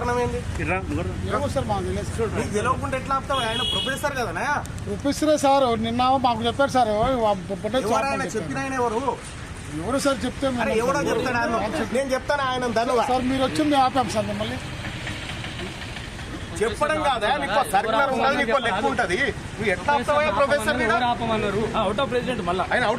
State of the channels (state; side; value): identical; both; correlation 1.00